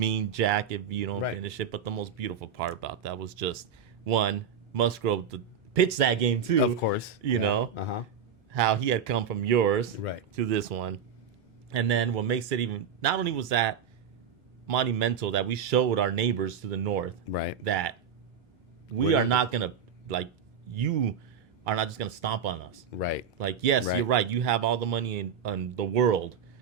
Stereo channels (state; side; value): quieter; left; 6.9 dB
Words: jack if you don't Right. finish it. But the most beautiful part about that was just, one, Musgrove to pitch that game too. Of course. You know? Uh-huh. How he had come from yours Right. to this one. And then what makes it even, not only was that monumental that we showed our neighbors to the north Right. that we We're are not- not going to, you are not just going to stomp on us. Right. Like, yes, Right. you're right. You have all the money in the world.